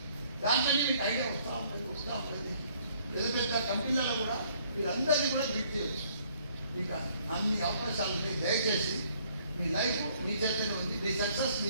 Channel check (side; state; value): both; inverted; correlation -0.63